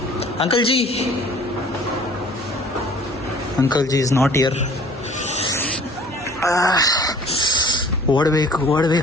Uncle G, uncle G is not here. ಓಡಬೇಕು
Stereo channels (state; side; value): normal; both; correlation 0.51